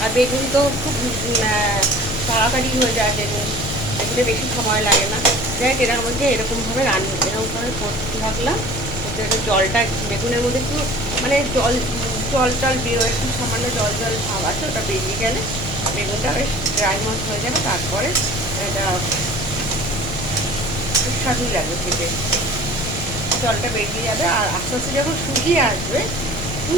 আর বেগুন তো খুব তাড়াতাড়ি হয়ে যায়। বেগুনে বেশি সময় লাগে না। যাই হোক, এরকমভাবে এরকমভাবে করতে থাকলাম। জলটা বেগুনের মধ্যে একটু মানে জল বেরোয়, একটু সামান্য জল ভাব আছে, ওটা বেরিয়ে গেলে বেগুনটা বেশ ড্রাই মত হয়ে যাবে। তারপরে এটা সুস্বাদুই লাগবে খেতে। জলটা বেরিয়ে যাবে আর আস্তে আস্তে যখন শুকিয়ে আসবে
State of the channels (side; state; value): left; noise; rumble, 8 dB below the sound